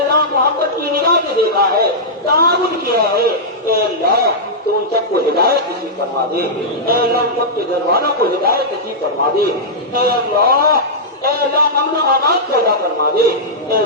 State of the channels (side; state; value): both; normal; correlation -0.10